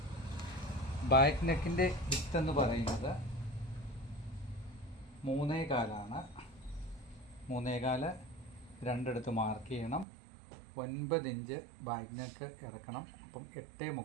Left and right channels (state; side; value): drops out; left; at 10.1 s